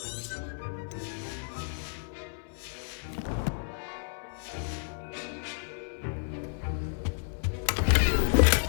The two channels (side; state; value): right; silent; 57 dB below the other